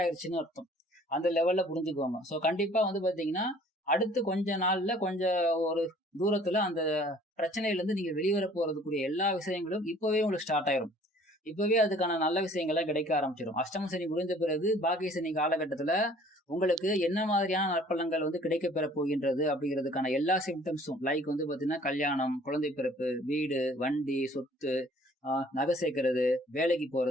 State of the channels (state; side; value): normal; both; correlation 0.54